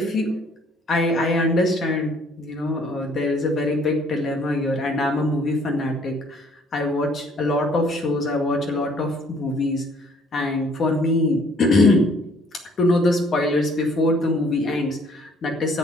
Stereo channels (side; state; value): both; normal; correlation 0.61